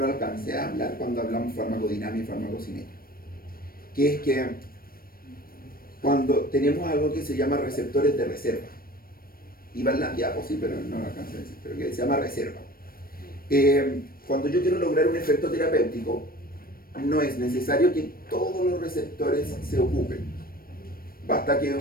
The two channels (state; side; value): late; right; 0.43 ms